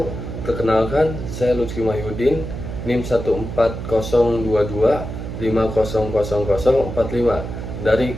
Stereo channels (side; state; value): right; noise; hum, 7 dB below the sound